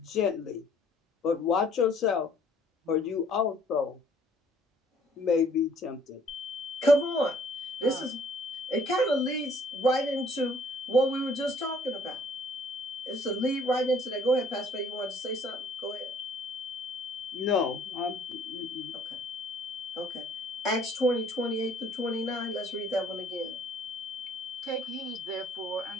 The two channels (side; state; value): both; normal; correlation 0.59